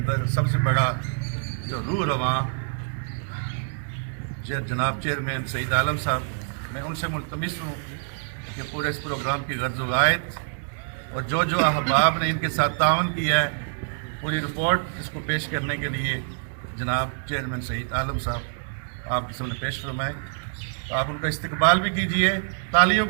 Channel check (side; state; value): left; silent; digital silence